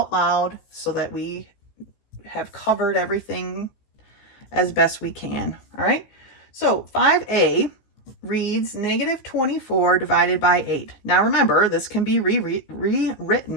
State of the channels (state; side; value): late; right; 15 ms